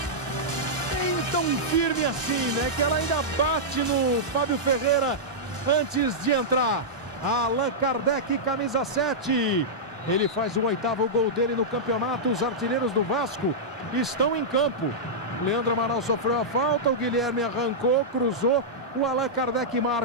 Nem tão firme assim, né? Que ela ainda bate no Fábio Ferreira antes de entrar. Allan Kardec, camisa 7. Ele faz o 8º gol dele no campeonato. Os artilheiros do Vasco estão em campo. Leandro Amaral sofreu a falta, o Guilherme arrancou, cruzou. O Allan Kardec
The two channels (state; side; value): normal; both; correlation -0.11